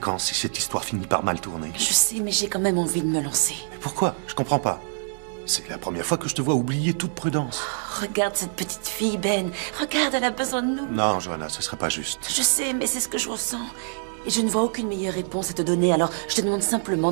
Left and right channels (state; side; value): silent; left; digital silence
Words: si cette histoire finit par mal tourner? Je sais, mais j'ai quand même envie de me lancer. Mais pourquoi? Je comprends pas. C'est la première fois que je te vois oublier toute prudence. Regarde cette petite fille, Ben. Regarde, elle a besoin de nous. Non, Johanna, ce serait pas juste. Je sais, mais c'est ce que je ressens. Et je ne vois aucune meilleure réponse à te donner, alors je te demande simplement